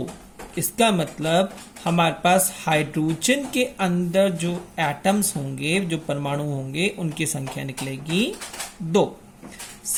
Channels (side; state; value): both; identical; correlation 1.00